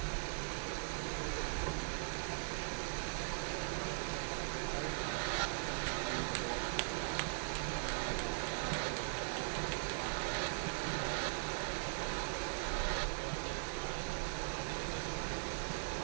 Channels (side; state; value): left; silent; digital silence